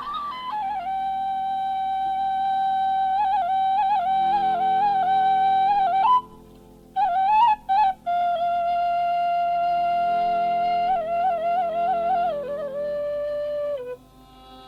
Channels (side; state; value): both; identical; correlation 1.00